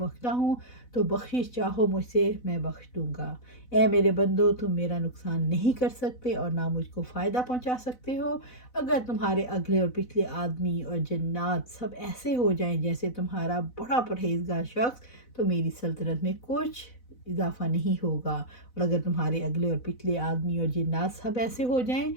ہوں، تو بخشش چاہو مجھ سے میں بخش دوں گا۔ اے میرے بندو، تم میرا نقصان نہیں کر سکتے اور نہ مجھ کو فائدہ پہنچا سکتے ہو۔ اگر تمہارے اگلے اور پچھلے آدمی اور جنات سب ایسے ہو جائیں جیسے تمہارا بڑا پرہیزگار شخص تو میری سلطنت میں کچھ اضافہ نہیں ہوگا، اور اگر تمہارے اگلے اور پچھلے آدمی اور جنات سب ایسے ہو جائیں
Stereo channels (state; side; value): late; right; 4.0 ms